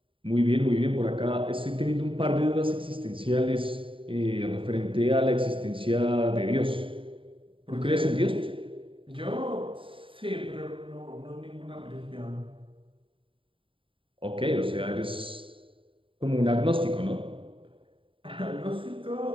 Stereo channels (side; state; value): left; late; 0.25 ms